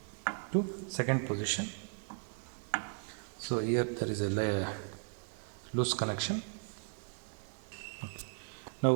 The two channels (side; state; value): left; silent; 53 dB below the other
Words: to second position. So here there is a loose connection.